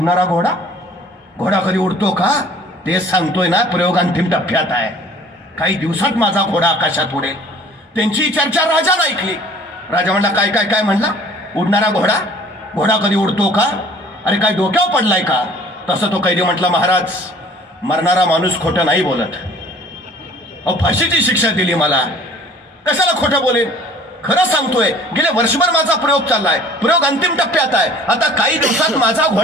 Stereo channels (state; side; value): normal; both; correlation 0.51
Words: घोडा? घोडा कधी उडतो का? तेच सांगतोय ना, प्रयोग अंतिम टप्प्यात आहे. काही दिवसात माझा घोडा आकाशात उडेल. त्यांची चर्चा राजानं ऐकली. राजा म्हणला, काय काय काय म्हणला? उडणारा घोडा? घोडा कधी उडतो का? अरे काय डोक्यावर पडलाय का? तसं तो कैदी म्हटला, महाराज, मरणारा माणूस खोटं नाही बोलत. अहो, फाशीची शिक्षा दिली मला, कशाला खोटं बोलेन? खरं सांगतोय. गेले वर्षभर माझा प्रयोग चाललाय. प्रयोग अंतिम टप्प्यात आहे. आता काही दिवसात माझा